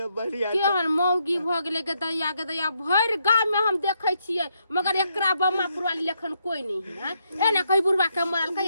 बढ़िया केहन मौगी भ गेलै के दैया भर गांव में हम देखै छियै, मगर एकरा बम्मापुर वाली लेखन कोई नहीं है। एना कहि बुढ़वा के मरल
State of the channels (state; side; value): inverted; both; correlation -0.77